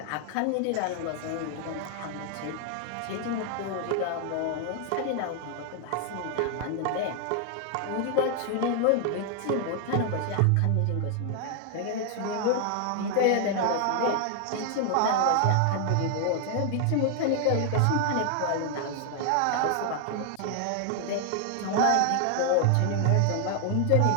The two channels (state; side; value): different; both; correlation 0.00